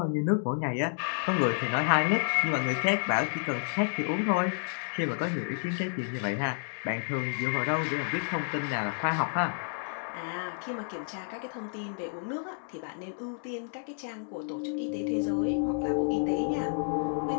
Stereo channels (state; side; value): silent; right; digital silence